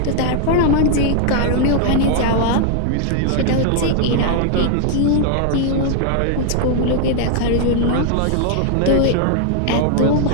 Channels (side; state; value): both; different; correlation 0.00